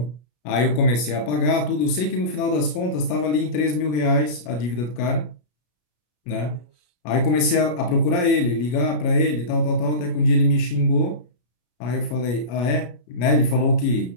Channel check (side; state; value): right; late; 33 ms